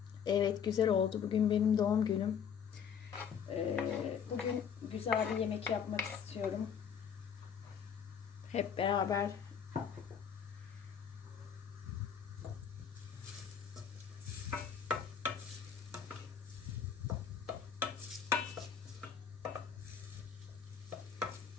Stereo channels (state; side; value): quieter; right; 7.5 dB